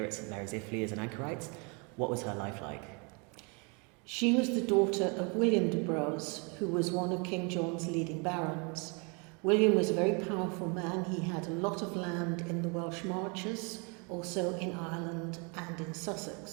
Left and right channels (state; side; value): quieter; left; 33.1 dB